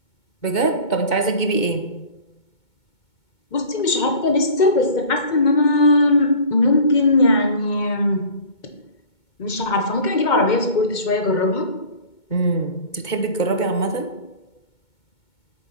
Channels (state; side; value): late; right; 2.2 ms